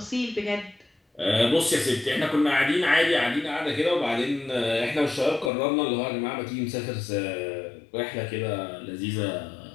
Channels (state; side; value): drops out; right; at 5.5 s